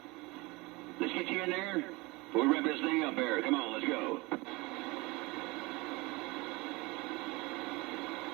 Let's get you in there before we wrap this thing up here. Come on, let's go.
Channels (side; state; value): left; quieter; 24.1 dB